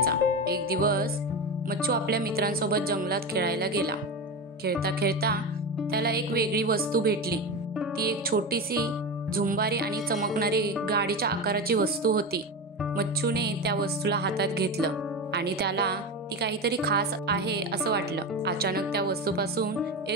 एक दिवस मच्छू आपल्या मित्रांसोबत जंगलात खेळायला गेला। खेळता खेळता त्याला एक वेगळी वस्तू भेटली। ती एक छोटीशी झुंबारी आणि चमकणारी गाडीच्या आकाराची वस्तू होती। मच्छूने त्या वस्तूला हातात घेतलं आणि त्याला ती काहीतरी खास आहे असं वाटलं। अचानक त्या वस्तूपासून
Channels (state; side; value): normal; both; correlation 0.21